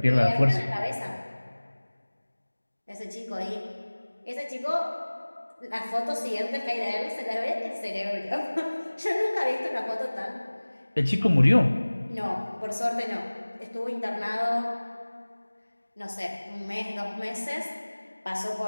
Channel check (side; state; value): both; inverted; correlation -1.00